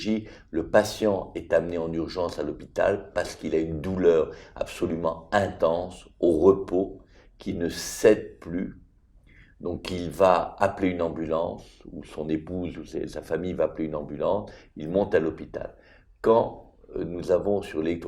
Le patient est amené en urgence à l'hôpital parce qu'il a une douleur absolument intense au repos qui ne cède plus. Donc il va appeler une ambulance, ou son épouse ou sa famille va appeler une ambulance, il monte à l'hôpital. Quand nous avons sur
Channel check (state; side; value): identical; both; correlation 1.00